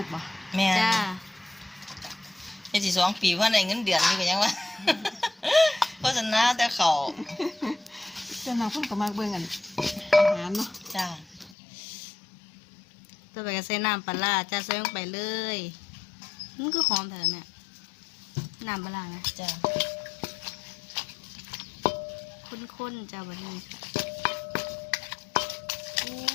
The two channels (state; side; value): drops out; right; at 11.6 s